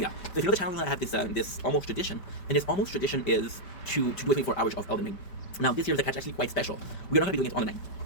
So if you know the channel, I have this almost tradition. And this almost tradition is to do 24 hours of Elden Ring. Now this year is actually quite special. We're not going to be doing it on the 9th.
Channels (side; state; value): right; late; 5.1 ms